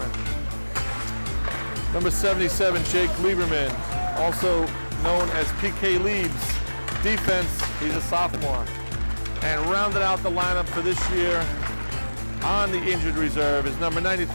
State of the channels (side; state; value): both; inverted; correlation -1.00